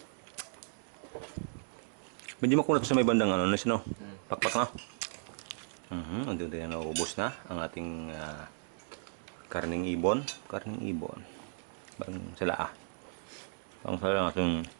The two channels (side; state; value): left; silent; digital silence